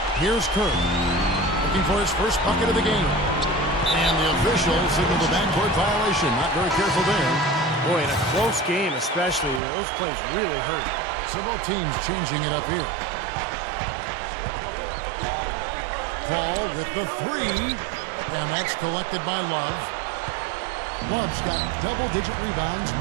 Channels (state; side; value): drops out; left; at 9.6 s